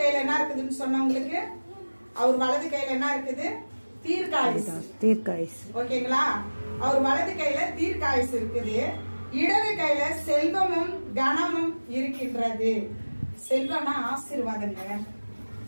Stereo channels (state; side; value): inverted; both; correlation -1.00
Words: கையில என்ன இருக்குதுன்னு சொன்னவங்களுக்கு, அவர் வலது கையில என்ன இருக்குது? தீர்க்காயுசு. ஓகேங்களா? அவர் வலது கையில தீர்க்காயுசு இருக்குது, இடது கையில செல்வமும் கனமும் இருக்கின்றது. செல்வம்னா ஆசீர்வாதங்க.